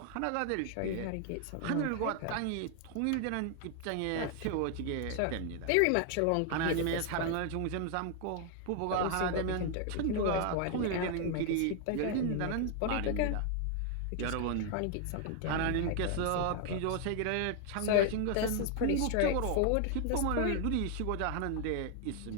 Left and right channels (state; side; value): different; both; correlation 0.00